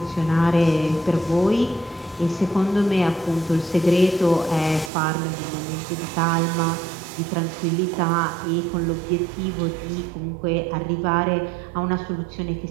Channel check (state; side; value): drops out; left; at 4.9 s